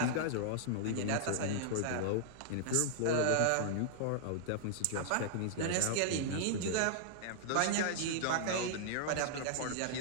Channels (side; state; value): both; different; correlation -0.01